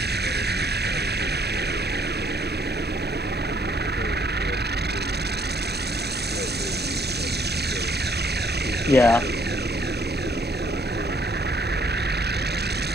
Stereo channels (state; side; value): normal; both; correlation 0.65